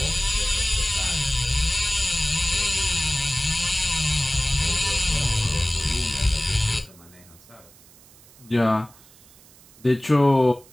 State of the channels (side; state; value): right; noise; hiss, 25 dB below the sound